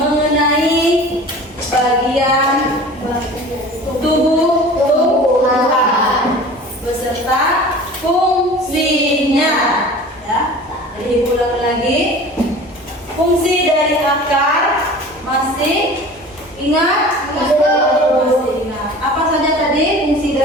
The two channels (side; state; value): both; normal; correlation 0.41